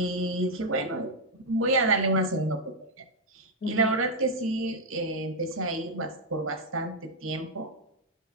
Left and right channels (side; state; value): both; normal; correlation 0.00